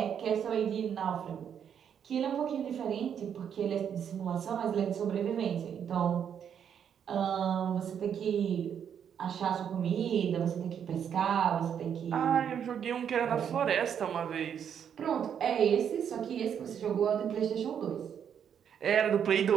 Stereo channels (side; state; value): left; quieter; 8.3 dB